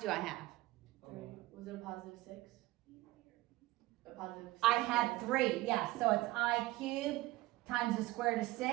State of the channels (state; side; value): quieter; left; 18.8 dB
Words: I have? 3. Was it a positive 6? A positive 6? I have 3, yes. So it's I cubed times the square root of